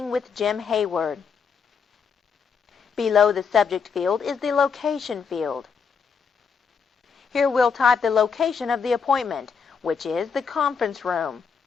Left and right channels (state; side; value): quieter; right; 6.0 dB